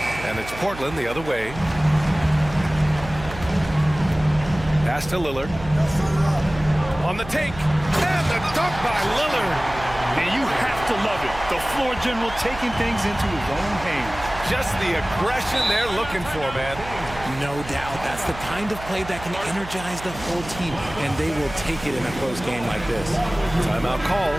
And it's Portland the other way. Pass to Lillard. On the take. And the dunk by Lillard. And you have to love it. The floor general taking things into his own hands. Just the aggression they're looking for, man. No doubt. That's the kind of play that can energize the whole team, and they will take it in a close game like this. Timeout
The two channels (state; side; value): noise; right; hum, 13 dB below the sound